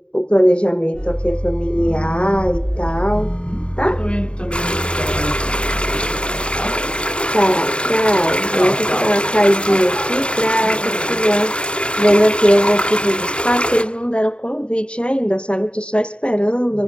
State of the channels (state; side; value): late; right; 0.054 ms